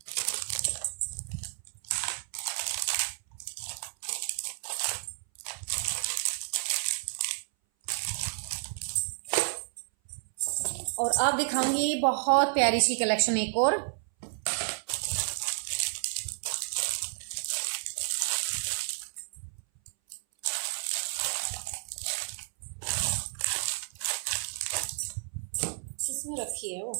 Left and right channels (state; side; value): silent; left; 57 dB below the other